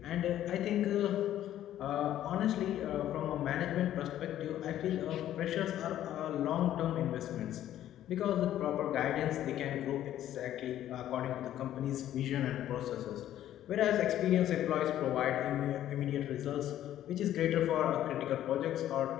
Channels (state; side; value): quieter; right; 12.2 dB